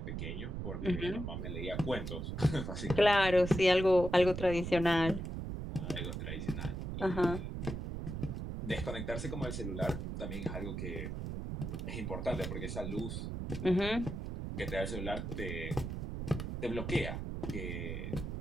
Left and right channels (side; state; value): right; noise; rumble, 5 dB below the sound